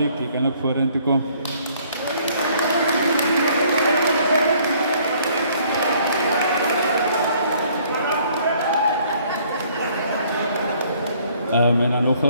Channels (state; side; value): inverted; both; correlation -0.61